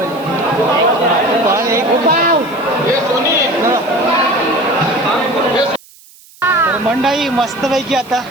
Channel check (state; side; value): noise; right; hiss, 25 dB below the sound